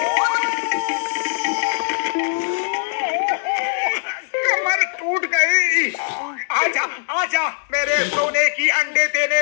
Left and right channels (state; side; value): silent; right; digital silence